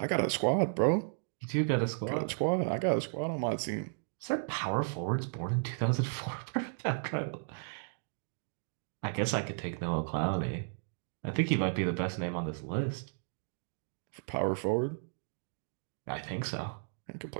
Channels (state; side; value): silent; left; digital silence